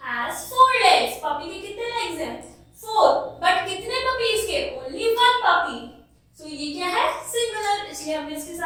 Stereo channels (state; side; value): identical; both; correlation 1.00